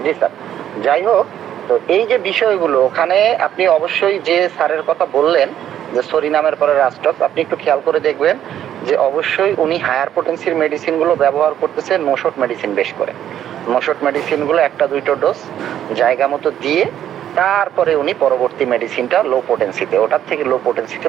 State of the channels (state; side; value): quieter; left; 10.7 dB